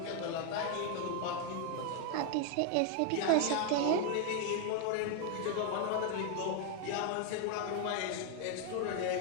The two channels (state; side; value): different; both; correlation 0.00